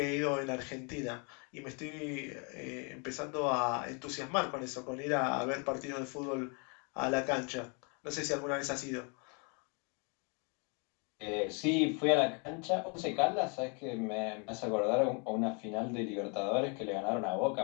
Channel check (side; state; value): right; quieter; 35.6 dB